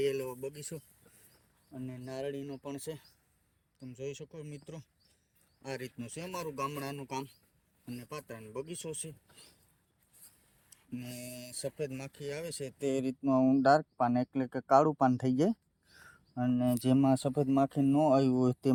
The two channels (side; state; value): both; identical; correlation 1.00